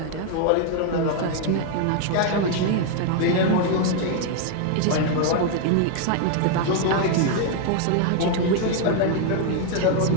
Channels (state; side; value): different; both; correlation 0.00